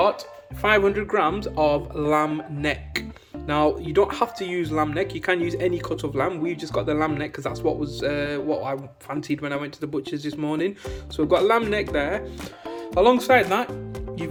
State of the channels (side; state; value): both; identical; correlation 1.00